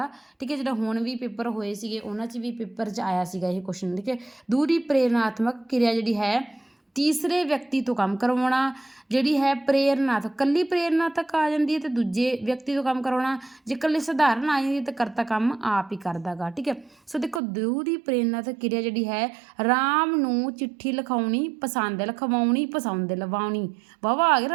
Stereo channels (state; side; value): drops out; left; at 17.4 s